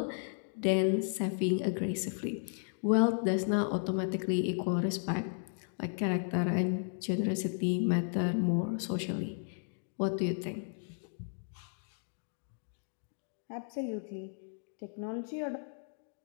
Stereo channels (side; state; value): right; silent; digital silence